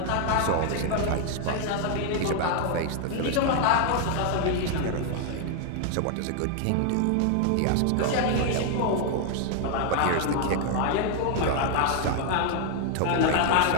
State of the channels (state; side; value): different; both; correlation 0.00